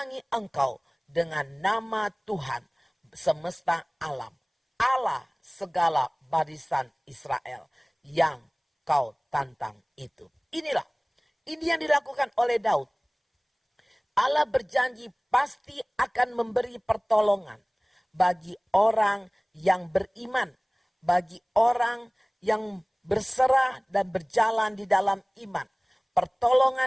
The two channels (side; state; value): both; identical; correlation 1.00